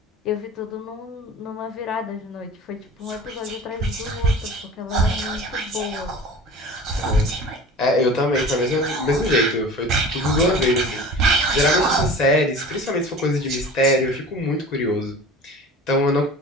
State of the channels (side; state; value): both; normal; correlation 0.39